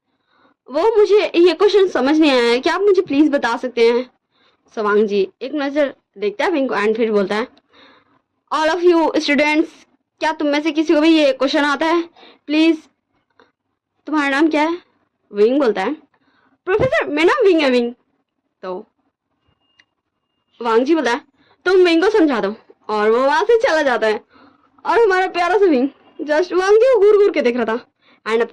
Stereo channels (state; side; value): identical; both; correlation 1.00